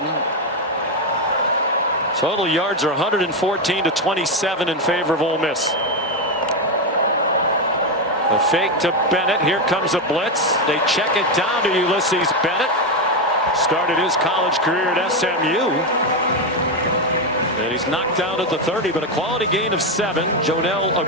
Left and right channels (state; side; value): normal; both; correlation 0.08